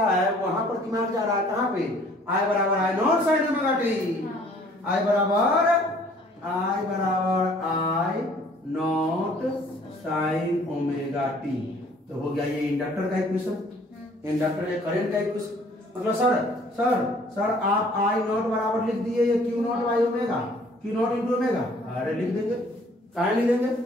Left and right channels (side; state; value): both; normal; correlation 0.57